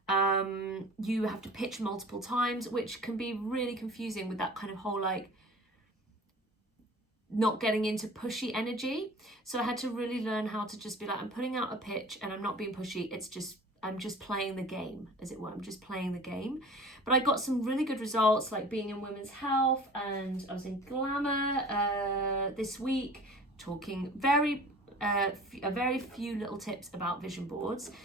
You have to pitch multiple times, which can be really confusing with that kind of whole like not getting into pushy energy. So I had to really learn how to just be like, I'm putting out a pitch and I'm not being pushy. It's just, I'm just playing the game, as it were. I'm just playing the game. But I got some really good results, like being in women's health, and I was in Glamour this week, talking a very few little tips about vision boards.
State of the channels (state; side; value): normal; both; correlation 0.43